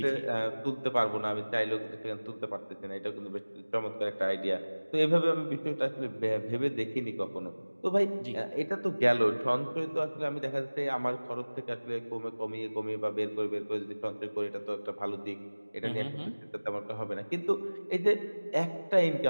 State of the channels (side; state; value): both; inverted; correlation -1.00